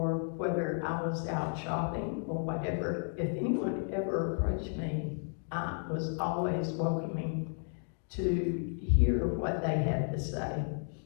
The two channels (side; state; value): right; silent; 56 dB below the other